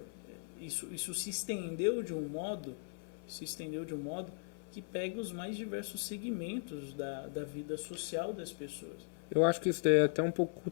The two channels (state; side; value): silent; right; 52 dB below the other